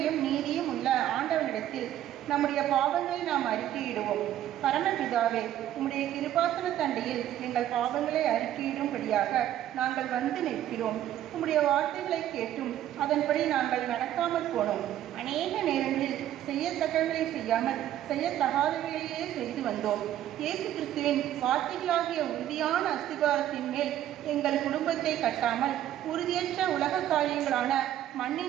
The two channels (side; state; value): left; quieter; 12.1 dB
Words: நீதியும் உள்ள ஆண்டவனிடத்தில் நம்முடைய பாவங்களை நாம் அறிக்கையிடுவோம். பரமபிதாவே, உம்முடைய கிருபாசன தண்டையில் எங்கள் பாவங்களை அறிக்கையிடும்படியாக நாங்கள் வந்து நிற்கிறோம். உம்முடைய வார்த்தைகளை கேட்டும் அதன்படி நாங்கள் நடக்காமல் போனோம். அநேக நேரங்களில் செய்யத்தக்கவர்களை செய்யாமல் செய்யத்தகாதவைகளையே செய்து வந்தோம். இயேசு கிறிஸ்துவின் வார்த்தைகளாகிய உறுதியான அஸ்திபாரத்தின் மேல் எங்கள் குடும்பத்தை கட்டாமல் உறுதியற்ற உலக காரியங்களான